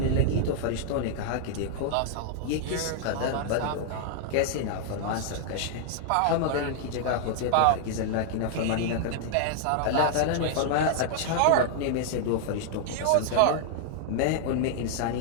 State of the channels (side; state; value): both; different; correlation 0.00